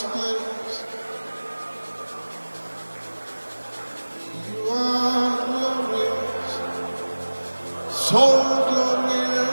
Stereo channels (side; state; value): both; inverted; correlation -1.00